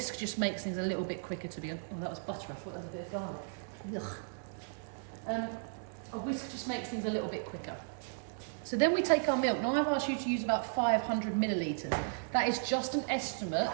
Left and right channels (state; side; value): silent; left; 54 dB below the other